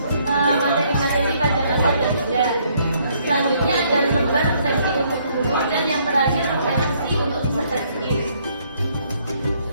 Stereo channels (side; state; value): both; inverted; correlation -0.67